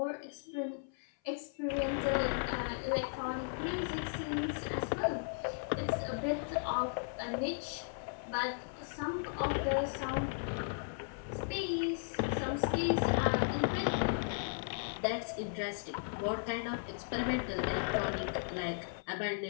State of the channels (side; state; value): right; silent; 54 dB below the other